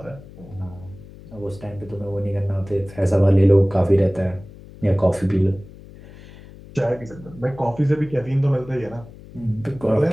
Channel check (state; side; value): noise; left; hum, 19 dB below the sound